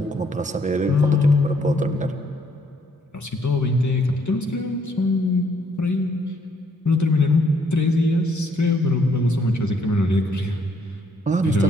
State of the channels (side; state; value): both; normal; correlation 0.69